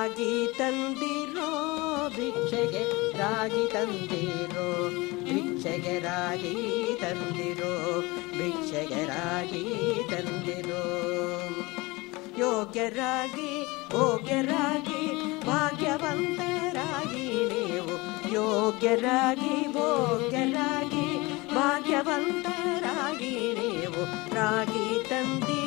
ತಂದಿರೋ ಭಿಕ್ಷೆಗೆ ರಾಗಿ ತಂದಿರೋ ಭಿಕ್ಷೆಗೆ ರಾಗಿ ತಂದಿರೋ ಭಿಕ್ಷೆಗೆ ರಾಗಿ ತಂದಿರೋ. ಯೋಗ್ಯರಾಗಿ ಭೋಗ್ಯರಾಗಿ ಭಾಗ್ಯವಂತರಾಗಿ ನೀವು ಯೋಗ್ಯರಾಗಿ ಭೋಗ್ಯರಾಗಿ ಭಾಗ್ಯವಂತರಾಗಿ ನೀವು ರಾಗಿ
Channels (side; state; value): right; quieter; 23.5 dB